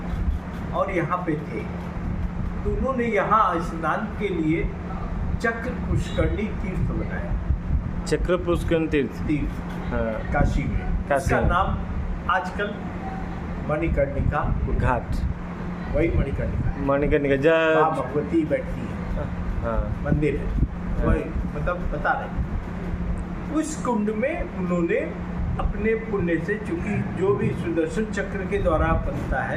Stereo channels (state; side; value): identical; both; correlation 1.00